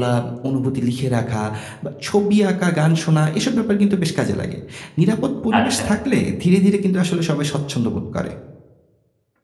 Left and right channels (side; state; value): both; identical; correlation 1.00